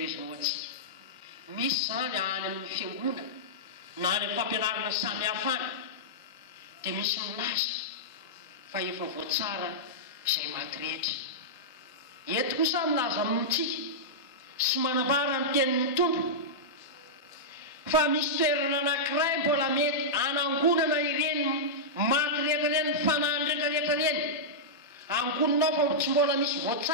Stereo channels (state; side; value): normal; both; correlation -0.11